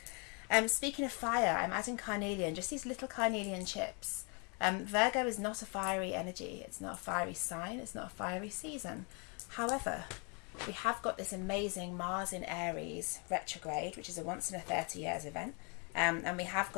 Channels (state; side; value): quieter; right; 34.7 dB